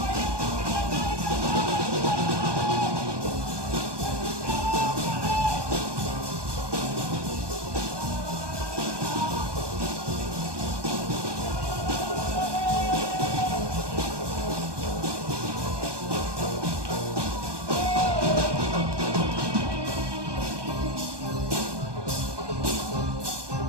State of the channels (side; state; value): left; late; 1.2 ms